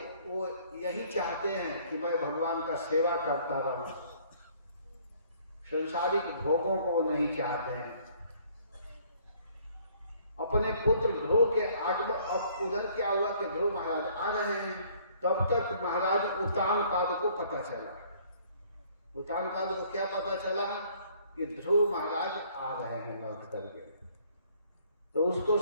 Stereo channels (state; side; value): inverted; both; correlation -0.59